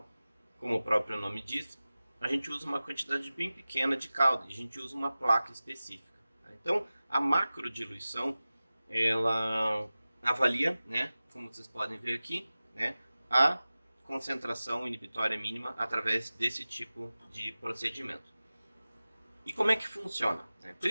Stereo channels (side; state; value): both; inverted; correlation -0.96